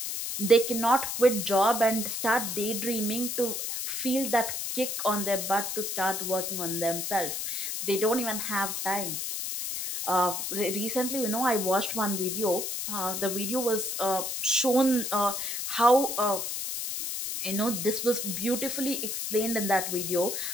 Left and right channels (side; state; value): left; noise; hiss, 3 dB below the sound